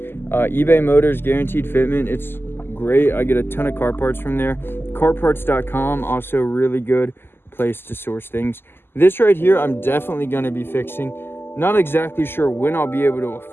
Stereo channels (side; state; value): right; late; 0.11 ms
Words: Motors guaranteed fitment. It's great. I get a ton of car parts from there. Carparts.com, also really good place to source things. This right here, I'm definitely going to be fixing. Not exactly sure when I'll be able to